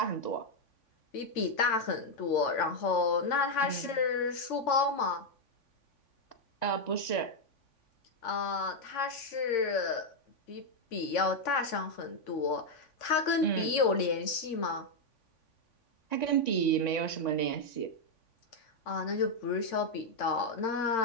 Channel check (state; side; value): late; right; 3.5 ms